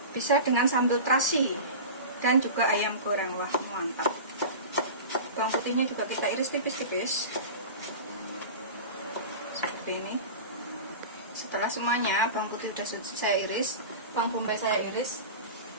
bisa dengan sambal terasi. Dan juga ayam goreng, wah mantap. Bawang putihnya juga kita iris tipis-tipis seperti ini. Setelah semuanya bawang putih sudah saya iris, bawang bombay saya iris,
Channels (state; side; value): inverted; both; correlation -0.31